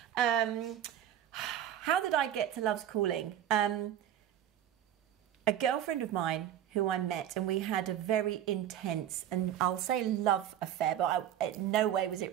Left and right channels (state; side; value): quieter; left; 10.8 dB